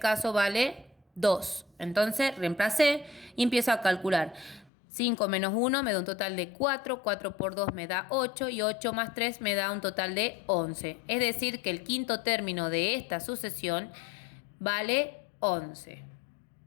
vale 2. Entonces reemplacé y empiezo a calcular. 5 menos 1 me da un total de 4, 4 por 2 me da 8 y 8 más 3 me da un total de 11. Es decir, que el quinto término de esta sucesión vale 11.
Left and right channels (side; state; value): right; drops out; at 4.7 s